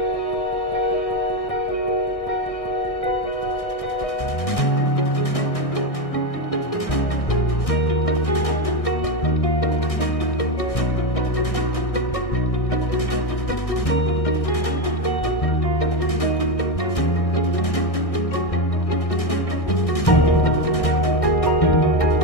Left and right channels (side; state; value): right; late; 1.6 ms